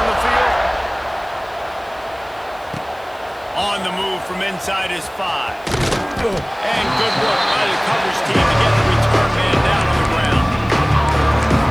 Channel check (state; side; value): noise; right; hiss, 28 dB below the sound